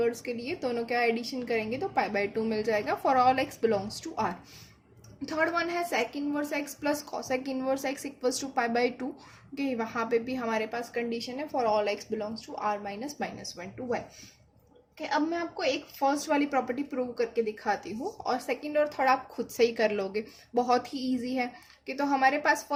के लिए, दोनों का एडिशन करेंगे तो पाई बाई 2 मिल जाएगा for all x belongs to R. Third one है sec inverse x plus cosec inverse x equals to pi by 2। Okay, वहाँ पे भी हमारे पास कंडीशन है for all x belongs to R minus -1 to 1। कि अब मैं आपको एक फर्स्ट वाली प्रॉपर्टी प्रूव करके दिखाती हूँ और सेकंड और थर्ड आप खुद से ही कर लोगे, बहुत ही इजी है। कि तो हमारे पास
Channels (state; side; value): identical; both; correlation 1.00